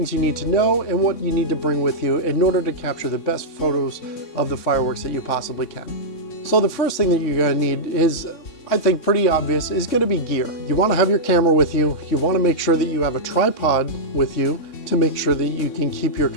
you need to know and what you need to bring with you in order to capture the best photos of the fireworks that you possibly can. So the first thing that you're going to need is, I think pretty obvious, is going to be gear. You want to have your camera with you. You want to make sure that you have a tripod with you to make sure that you can keep your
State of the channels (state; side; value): late; right; 3.6 ms